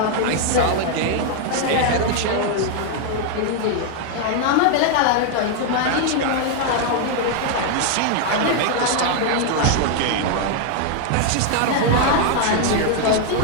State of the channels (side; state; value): both; different; correlation 0.00